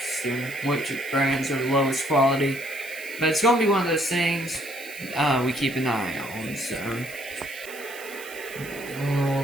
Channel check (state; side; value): noise; right; hiss, 15 dB below the sound